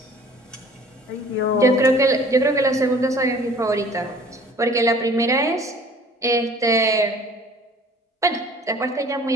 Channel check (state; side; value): normal; both; correlation 0.50